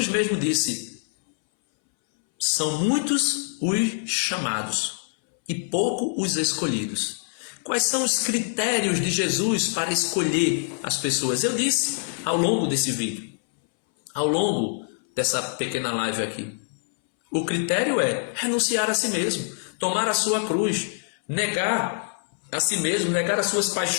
mesmo disse: são muitos os chamados e pouco os escolhidos. Quais são os critérios de Jesus para escolher as pessoas? Eu disse ao longo desse vídeo, ao longo dessa pequena live aqui. O critério é renunciar a si mesmo, tomar a sua cruz, negar a si mesmo, negar as suas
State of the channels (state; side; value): silent; right; 62 dB below the other